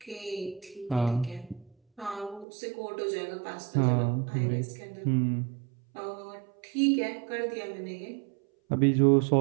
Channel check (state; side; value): drops out; left; at 2.5 s